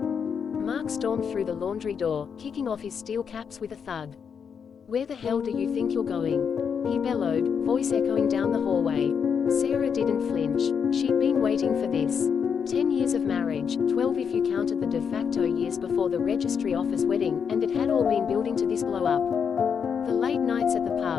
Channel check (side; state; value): right; quieter; 6.8 dB